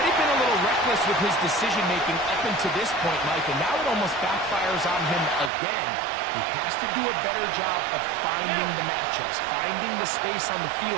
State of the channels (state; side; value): drops out; left; at 5.5 s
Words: been a little reckless with his decision-making up until this point, Mike, and now it almost backfires on him again. He has to do a better job of finding the matchups, finding the space on the